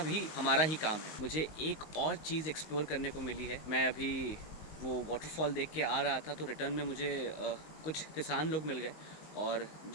भी हमारा ही काम है। मुझे एक और चीज़ एक्सप्लोर करने को मिली है। मैं अभी वो वाटरफॉल देख के आ रहा था तो रिटर्न में मुझे कुछ किसान लोग मिल गए और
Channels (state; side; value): late; right; 19 ms